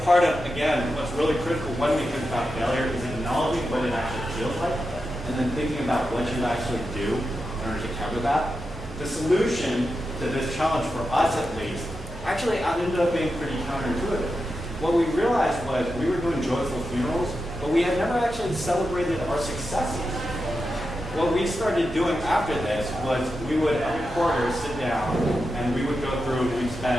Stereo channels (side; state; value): both; normal; correlation 0.89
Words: part of, again, what's really critical when we think about failure is acknowledging what it actually feels like, and then thinking about what you actually do in order to cover that. The solution to this challenge, for us at least, actually ended up being pretty counterintuitive. What we realized was we were doing joyful funerals, but we had never actually celebrated our successes. What we started doing after this was we would, every quarter, sit down, and we would go through, we'd